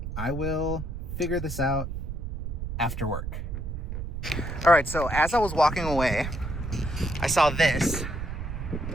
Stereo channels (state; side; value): noise; right; rumble, 5 dB below the sound